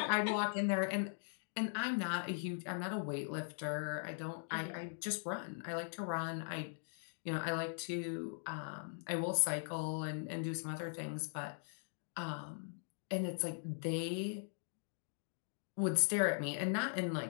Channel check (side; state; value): right; silent; digital silence